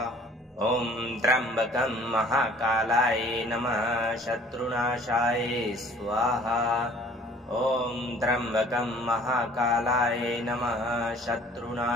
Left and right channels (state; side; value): normal; both; correlation 0.53